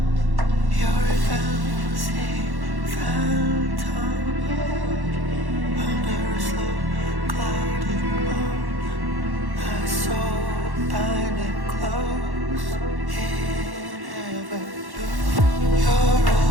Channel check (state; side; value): late; left; 1.1 ms